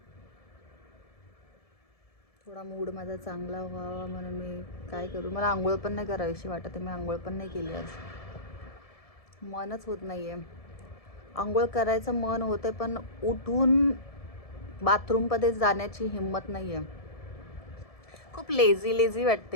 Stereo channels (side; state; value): right; late; 1.7 ms